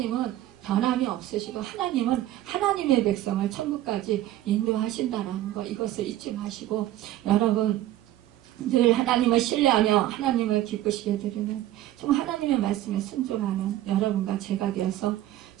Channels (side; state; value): left; quieter; 14.1 dB